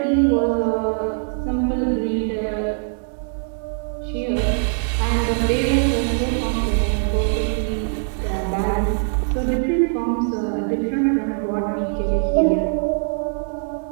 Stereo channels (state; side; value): silent; left; 64 dB below the other